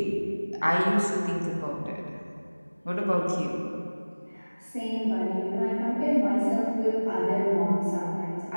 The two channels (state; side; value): inverted; both; correlation -1.00